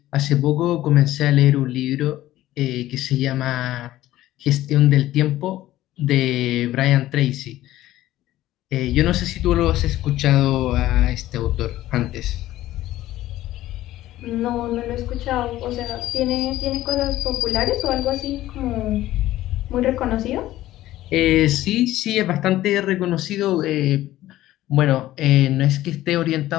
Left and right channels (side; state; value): right; quieter; 14.9 dB